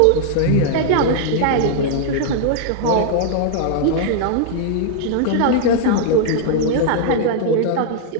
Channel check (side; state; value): both; different; correlation -0.01